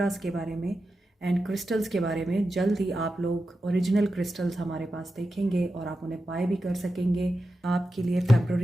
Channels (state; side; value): normal; both; correlation 0.91